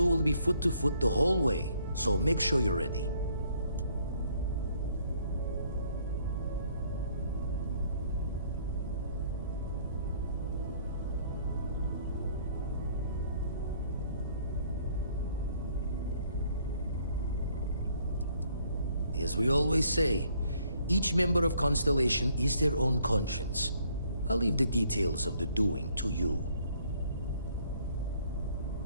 will be foot to foot the whole way, so make sure you're ready. As we always say, each member of Constellation is their own conscience. I'll leave the details of the doing to you.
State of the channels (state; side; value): inverted; both; correlation -0.64